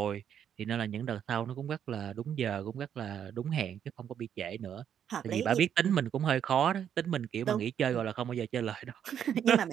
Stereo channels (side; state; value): left; quieter; 9.0 dB